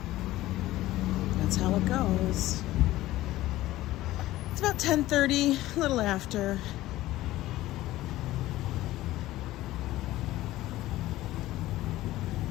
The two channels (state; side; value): quieter; right; 16.1 dB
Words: That's how it goes. It's about 10:30, a little after.